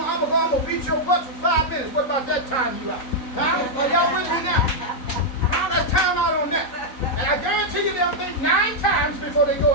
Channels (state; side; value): late; right; 3.9 ms